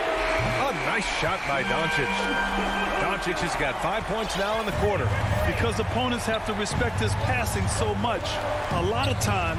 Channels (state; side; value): identical; both; correlation 1.00